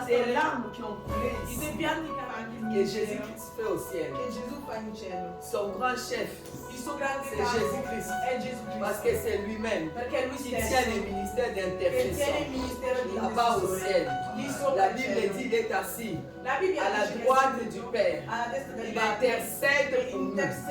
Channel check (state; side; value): identical; both; correlation 1.00